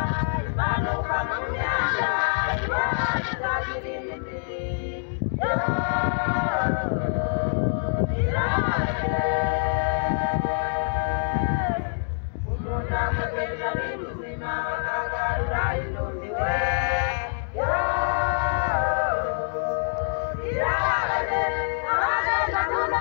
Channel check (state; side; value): silent; right; digital silence